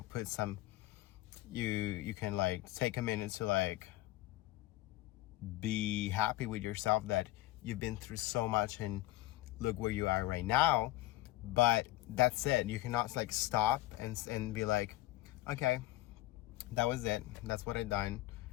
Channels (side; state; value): right; quieter; 17.0 dB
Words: put some, you can like take a minute to like be happy with yourself that you've been through so much and look where you are right now. But that's it. You cannot like stop and be like, okay, that was it, that's what I done,